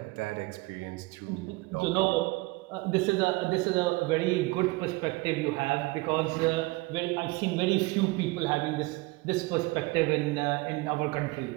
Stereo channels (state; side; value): quieter; left; 22.9 dB